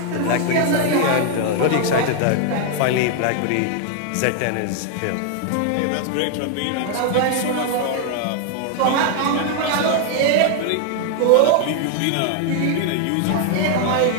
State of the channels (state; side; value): different; both; correlation 0.00